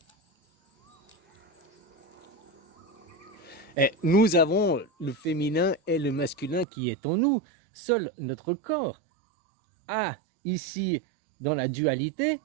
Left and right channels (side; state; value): left; drops out; at 6.7 s